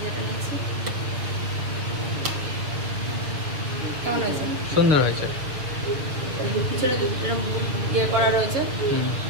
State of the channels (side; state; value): left; late; 6.4 ms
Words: যেটা নিয়েছি কেমন হয়েছে? সুন্দর হয়েছে, পিছনে ইয়ে করা রয়েছে,